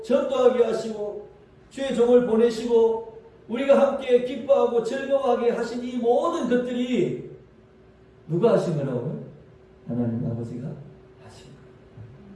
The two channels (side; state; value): both; identical; correlation 1.00